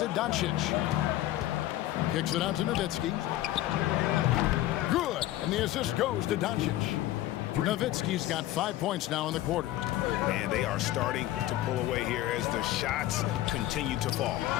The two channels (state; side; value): quieter; right; 14.8 dB